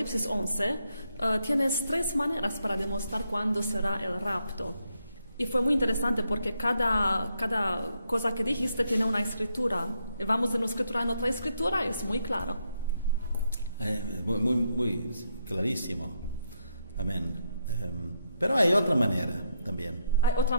11 tienes 3 maneras para demostrar cuándo será el rapto. Y fue muy interesante porque cada cosa que dijiste tiene una escritura. Y vamos de una escritura en otra escritura, es muy claro. Muy clarísimo. Amén. Pero hay otra manera también. ¿Hay otras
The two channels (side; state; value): both; inverted; correlation -0.78